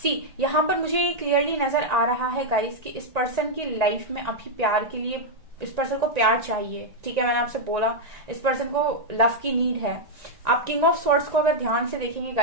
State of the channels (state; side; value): late; left; 1.9 ms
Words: यहाँ पर मुझे ये क्लियरली नजर आ रहा है गाइस कि इस पर्सन की लाइफ में अभी प्यार के लिए, इस पर्सन को प्यार चाहिए। ठीक है, मैंने आपसे बोला इस पर्सन को लव की नीड है। आप किंग ऑफ स्वॉर्ड्स को अगर ध्यान से देखेंगे